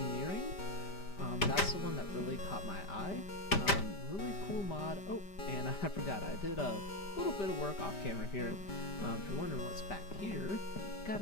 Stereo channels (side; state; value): right; late; 5.1 ms